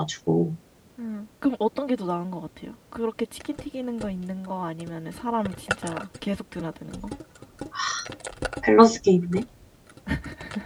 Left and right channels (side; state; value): both; identical; correlation 1.00